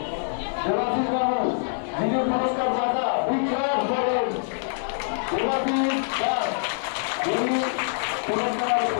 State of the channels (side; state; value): right; silent; 62 dB below the other